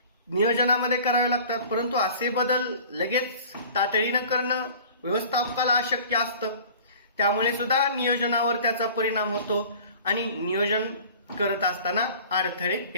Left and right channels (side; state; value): both; inverted; correlation -0.45